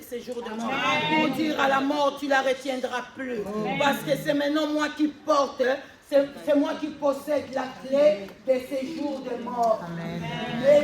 séjours de mort. Pour dire à la mort, tu ne la retiendras plus. Parce que c'est maintenant moi qui porte, c'est moi qui possède la clé des séjours de mort.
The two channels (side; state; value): both; identical; correlation 1.00